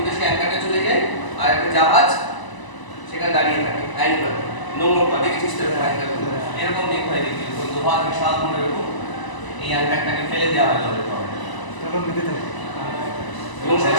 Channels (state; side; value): late; right; 1.0 ms